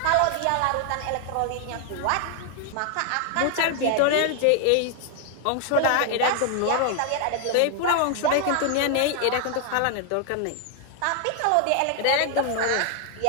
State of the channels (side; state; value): both; different; correlation 0.00